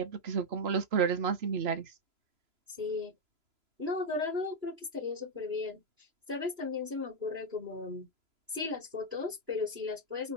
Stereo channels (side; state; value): left; late; 3.0 ms